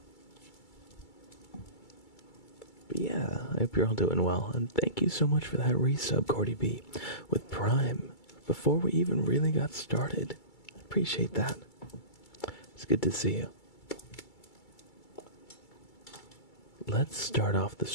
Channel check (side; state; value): right; late; 2.3 ms